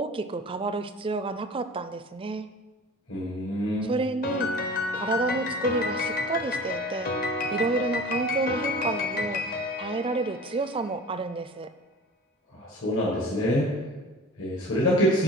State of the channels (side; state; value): both; normal; correlation 0.40